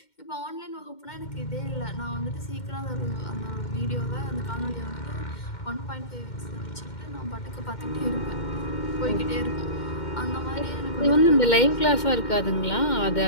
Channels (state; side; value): late; right; 2.1 ms